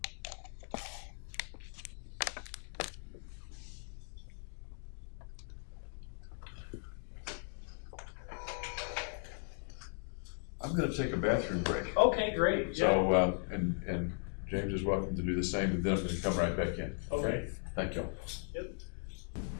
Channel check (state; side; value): silent; right; 53 dB below the other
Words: I'm going to take a bathroom break. Okay, great. So, and James is welcome to do the same, and then I'm going to come right back in. Okay. Thank you. Yep.